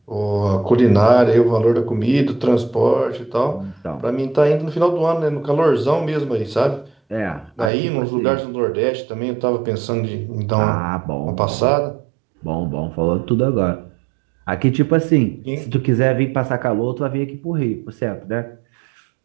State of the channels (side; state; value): left; drops out; at 7.7 s